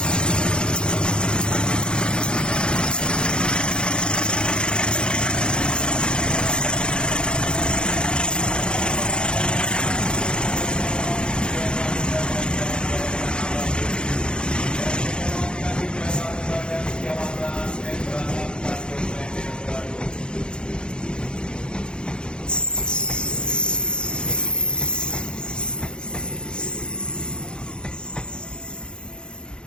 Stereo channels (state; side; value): late; right; 0.050 ms